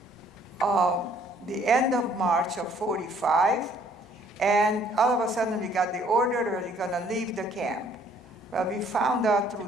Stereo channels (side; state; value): both; normal; correlation 0.61